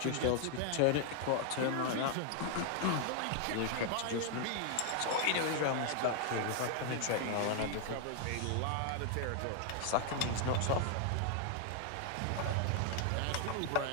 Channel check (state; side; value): different; both; correlation 0.00